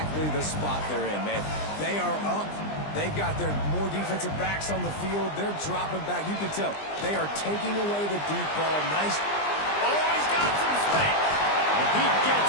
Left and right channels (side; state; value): right; late; 20 ms